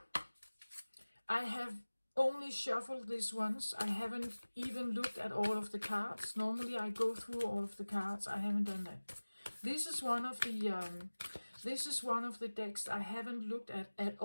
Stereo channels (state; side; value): inverted; both; correlation -1.00